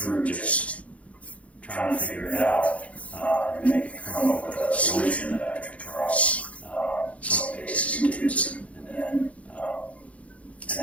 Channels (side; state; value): right; late; 0.065 ms